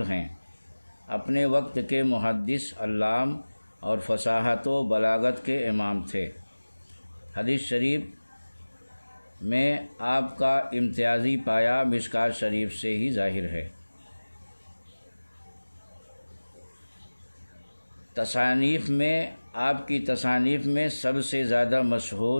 ہیں۔ اپنے وقت کے محدث، علام اور فصاحت و بلاغت کے امام تھے۔ حدیث شریف میں آپ کا امتیازی پایہ مشکوٰۃ شریف سے ہی ظاہر ہے۔ تصانیف میں آپ کی تصانیف میں سب سے زیادہ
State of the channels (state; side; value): inverted; both; correlation -1.00